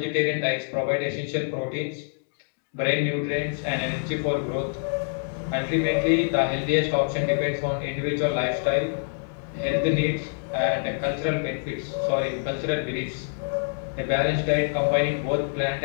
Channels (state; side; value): silent; right; digital silence